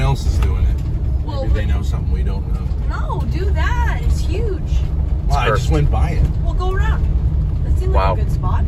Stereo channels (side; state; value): both; identical; correlation 1.00